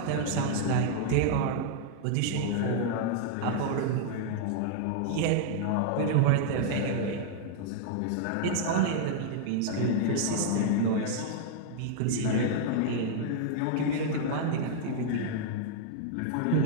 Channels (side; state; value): both; different; correlation -0.01